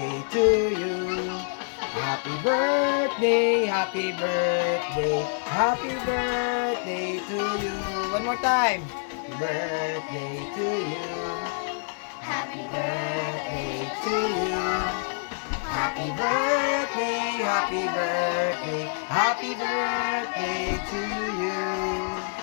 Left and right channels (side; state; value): right; silent; digital silence